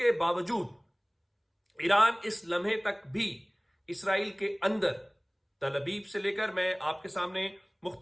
बावजूद ईरान इस लम्हे तक भी इसराइल के अंदर, तल अबीब से लेकर, मैं आपके सामने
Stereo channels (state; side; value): identical; both; correlation 1.00